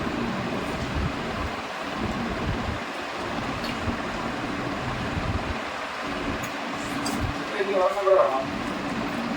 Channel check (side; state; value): both; identical; correlation 1.00